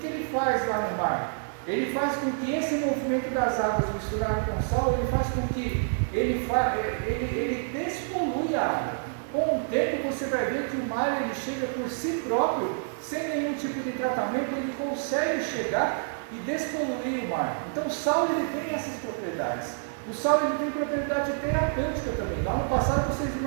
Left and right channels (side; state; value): left; silent; digital silence